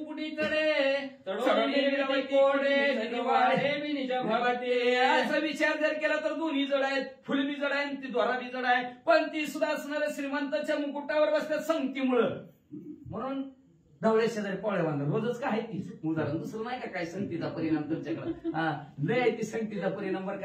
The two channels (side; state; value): both; identical; correlation 1.00